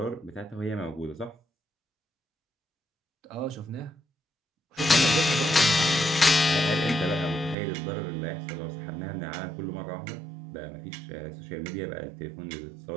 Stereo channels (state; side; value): drops out; left; at 7.6 s